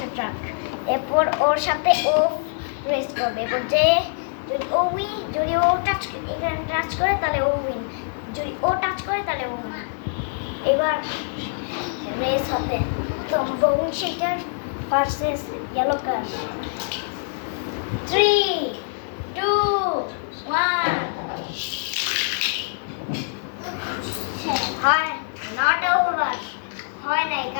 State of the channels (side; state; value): right; silent; 60 dB below the other